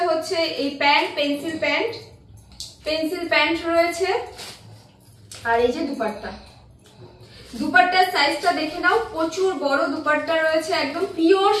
হচ্ছে এই প্যান্ট, পেন্সিল প্যান্ট রয়েছে, আর এই যে দুপাট্টার সাইজটা দেখে নাও, প্রচুর বড় দুপাট্টা রয়েছে, একদম পিওর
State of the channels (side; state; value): both; identical; correlation 1.00